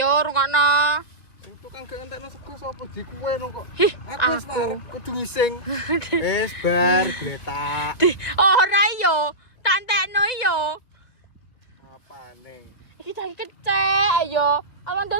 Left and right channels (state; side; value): late; right; 2.2 ms